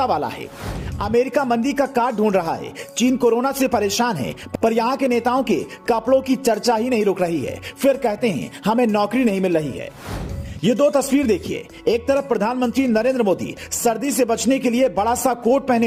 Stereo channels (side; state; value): both; identical; correlation 1.00